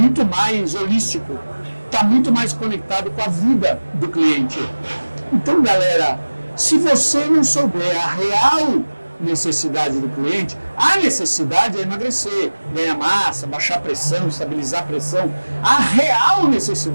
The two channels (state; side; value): inverted; both; correlation -1.00